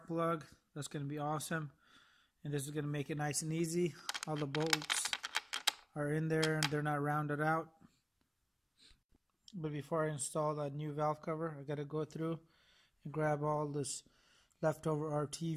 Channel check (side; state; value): both; identical; correlation 1.00